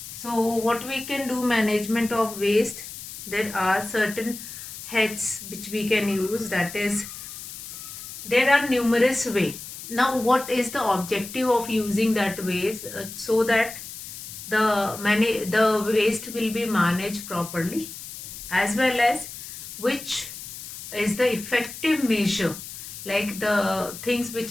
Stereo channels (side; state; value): left; noise; hiss, 11 dB below the sound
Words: So what we can do management of waste, there are certain heads which we can use, that is there are numerous ways. Now what is the objective of using that waste? So that the waste will be managed properly, as well as which is the effective measure, like the things which